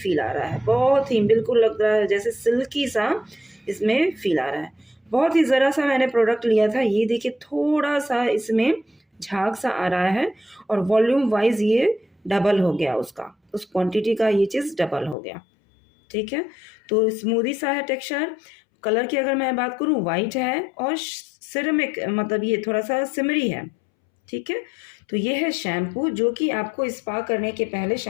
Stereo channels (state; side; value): drops out; right; at 15.2 s